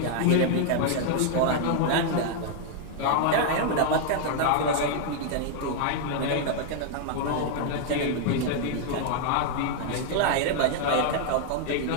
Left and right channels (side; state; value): both; different; correlation 0.00